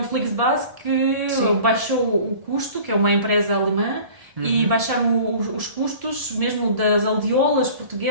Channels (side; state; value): left; late; 1.7 ms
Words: Flixbus, que baixou o custo, que é uma empresa alemã, e baixaram os custos, mesmo das aldeolas